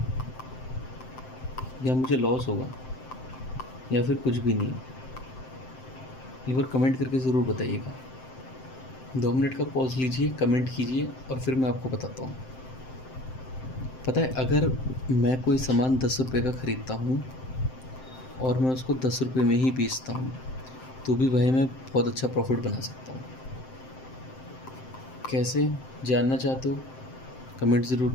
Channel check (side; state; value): right; late; 7.7 ms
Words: या मुझे लॉस होगा या फिर कुछ भी नहीं? एक बार कमेंट करके ज़रूर बताइएगा। 2 मिनट का पॉज लीजिए, कमेंट कीजिए और फिर मैं आपको बताता हूँ। पता है, अगर मैं कोई सामान 10 रुपये का ख़रीदता हूँ और मैं उसको 10 रुपये में ही बेचता हूँ, तो भी भाई मैं बहुत अच्छा प्रॉफिट बना सकता हूँ। कैसे जानना चाहते हो, कमेंट ज़रूर